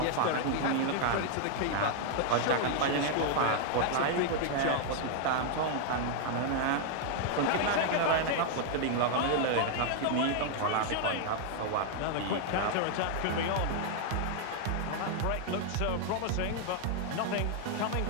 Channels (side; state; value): both; different; correlation 0.00